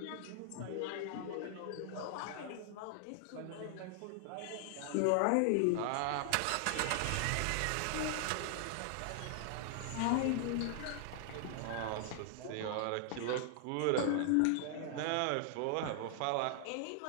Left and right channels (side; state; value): both; different; correlation 0.00